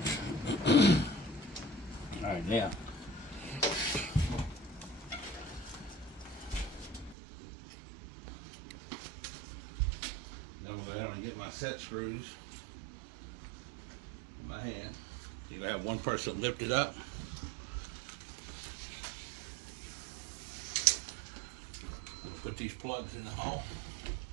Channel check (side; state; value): left; drops out; at 7.2 s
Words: Alright, now. I'm going to go ahead and get my set screws in my hand. You're going to have one person lift it up. Put these plugs in the hole.